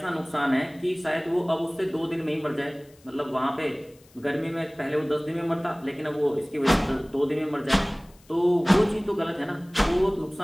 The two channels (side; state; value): left; noise; hiss, 29 dB below the sound